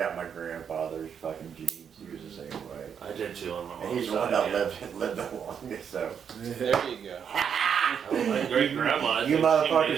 grandfather's fucking genes. He was the same way. I did too on my mom's And he's the one side, that yeah. lived the longest. So There you go. Oh, my great grandma. you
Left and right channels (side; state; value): left; quieter; 7.6 dB